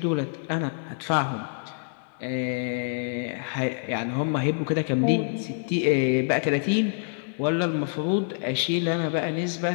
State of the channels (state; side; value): silent; right; digital silence